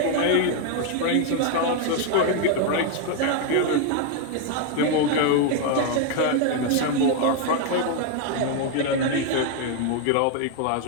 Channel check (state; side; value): different; both; correlation 0.01